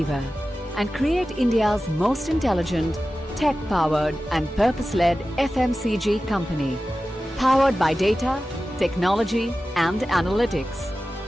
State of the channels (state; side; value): normal; both; correlation 0.95